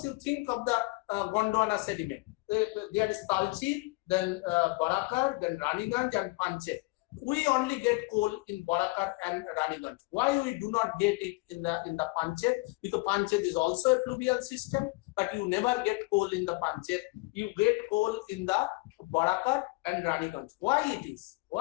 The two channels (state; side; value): quieter; right; 25.1 dB